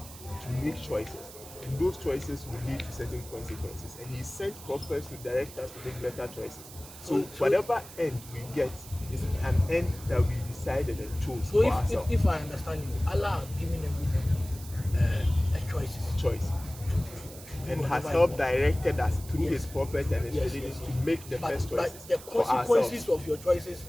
to make choices, and those choices will lead to certain consequences. And He sent prophets to direct us to make better choices. So whatever end we get is an end that we decided and chose So for ourselves. if I understand you, Allah has given everybody a choices. Choice. and has whatever helped you want. directed us through Yes. his prophets and his Yes, religion yes, to yes. make the best But choices the for consequences ourselves of your choices,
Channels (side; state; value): right; noise; hiss, 16 dB below the sound